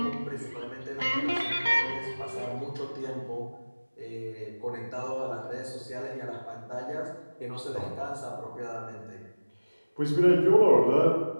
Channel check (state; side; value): inverted; both; correlation -1.00